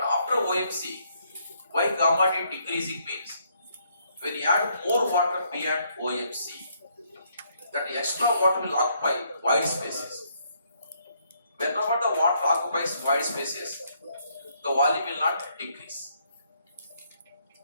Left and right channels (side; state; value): both; inverted; correlation -0.71